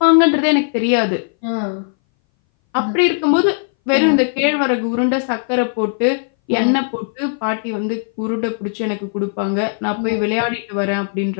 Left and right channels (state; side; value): silent; right; 61 dB below the other